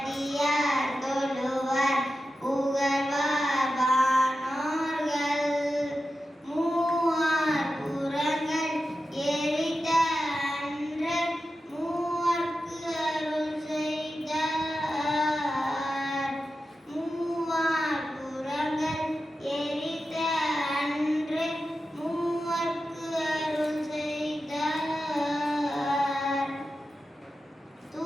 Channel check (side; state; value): both; normal; correlation 0.92